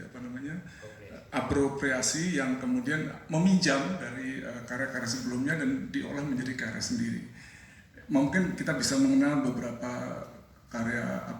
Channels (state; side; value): identical; both; correlation 1.00